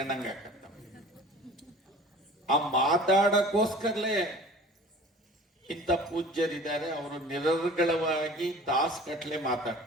ಆಕತ್ತ. ಆ ಮಾತಾಡಕ್ಕೋಸ್ಕರಲೇ ಇಂಥ ಪೂಜ್ಯರಿದ್ದಾರೆ, ಅವರು ನಿರರ್ಗಳವಾಗಿ ತಾಸುಗಟ್ಲೆ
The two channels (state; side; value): normal; both; correlation 0.43